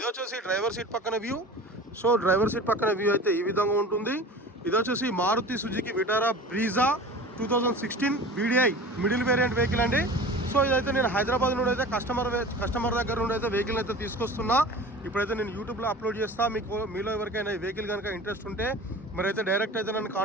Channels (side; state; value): both; normal; correlation 0.38